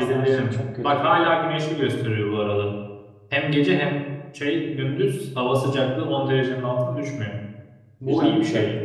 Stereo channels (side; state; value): both; identical; correlation 1.00